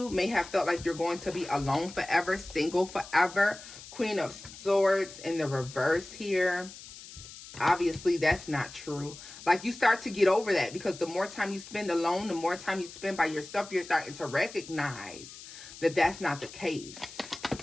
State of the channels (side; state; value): left; noise; hiss, 16 dB below the sound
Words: may have felt like you're going to be alone forever, single forever. Queen of Swords in the reverse here. Obviously, that's not true. Like, you start to get over that, because the more time you spend alone, the more time you spend by yourself, you're starting to recognize that that's not the case.